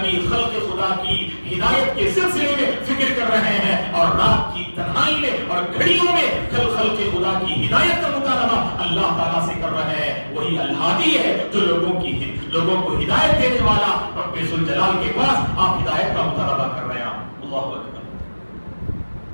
خلق خدا کی ہدایت کے سلسلے میں فکر کر رہے ہیں، اور رات کی تنہائی میں اور گھڑیوں میں خلق خدا کی ہدایت کا مطالبہ اللہ تعالیٰ سے کر رہے ہیں۔ وہی الہادی ہے جو لوگوں کو ہدایت دینے والا رب ذوالجلال کے پاس آپ ہدایت کا مطالبہ کر رہے ہیں۔ اللہ اکبر۔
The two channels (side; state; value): both; inverted; correlation -1.00